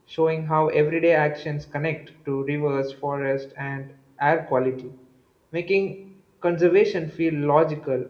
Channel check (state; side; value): identical; both; correlation 1.00